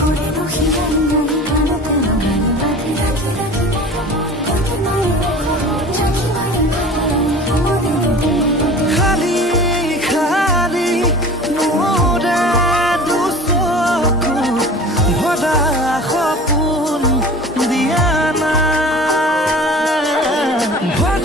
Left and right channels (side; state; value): both; normal; correlation 0.40